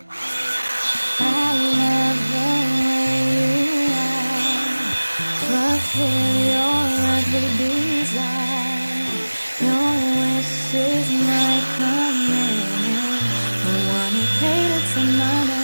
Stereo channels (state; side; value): inverted; both; correlation -1.00